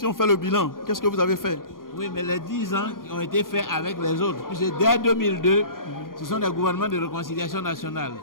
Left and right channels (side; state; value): right; late; 0.91 ms